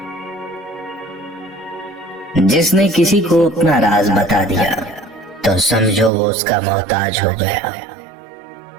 جس نے کسی کو اپنا راز بتا دیا تو سمجھو وہ اس کا محتاج ہو گیا۔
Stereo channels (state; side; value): drops out; left; at 6.1 s